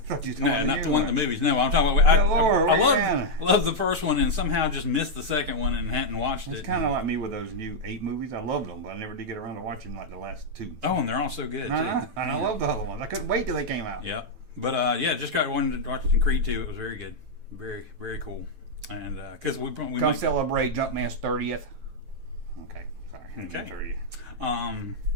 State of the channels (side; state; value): left; late; 9.0 ms